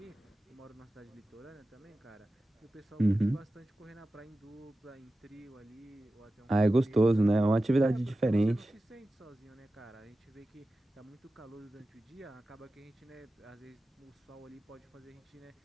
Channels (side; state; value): both; normal; correlation 0.94